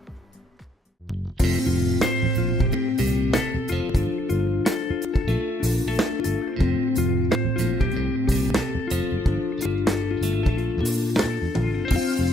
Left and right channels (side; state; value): both; normal; correlation 0.72